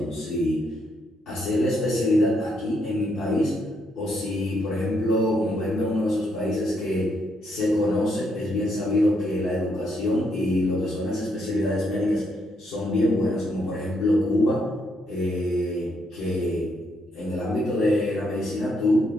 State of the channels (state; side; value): normal; both; correlation 0.76